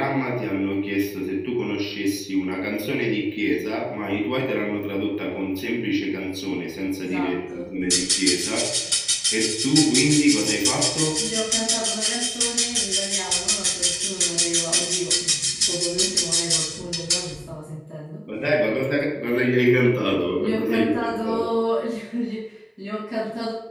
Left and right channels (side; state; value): both; identical; correlation 1.00